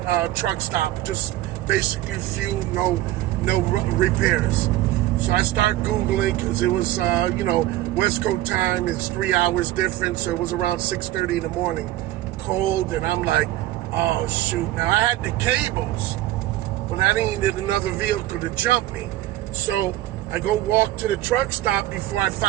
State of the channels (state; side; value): quieter; left; 15.5 dB